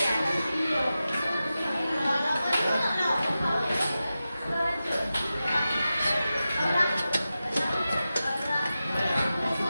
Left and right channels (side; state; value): both; inverted; correlation -0.93